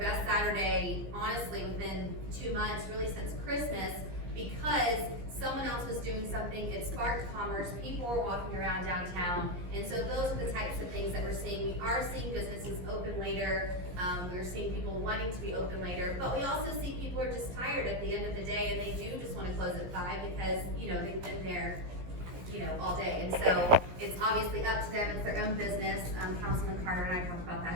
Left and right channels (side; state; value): left; late; 17 ms